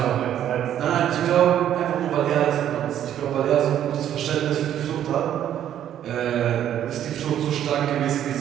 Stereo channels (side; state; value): left; quieter; 10.7 dB